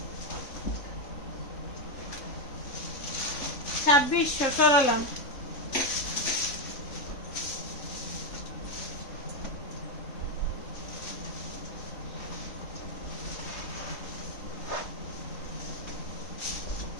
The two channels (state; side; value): late; right; 3.7 ms